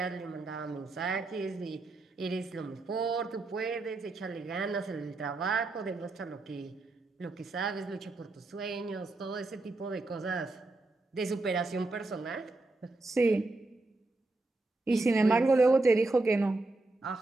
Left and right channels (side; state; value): left; quieter; 3.1 dB